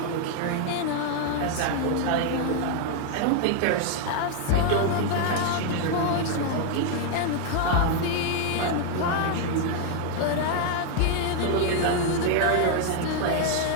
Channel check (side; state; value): both; different; correlation 0.00